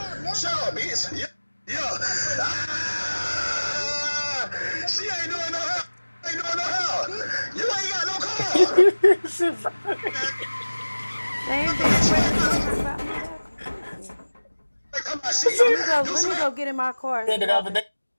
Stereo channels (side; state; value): both; inverted; correlation -1.00